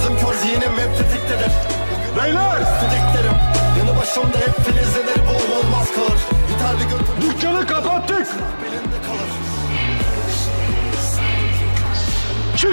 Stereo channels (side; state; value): both; inverted; correlation -1.00